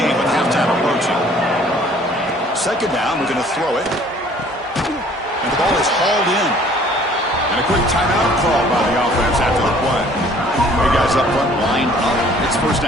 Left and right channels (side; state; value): both; normal; correlation 0.55